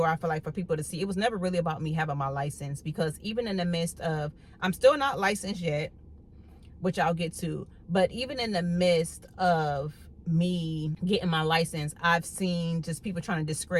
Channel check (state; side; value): identical; both; correlation 1.00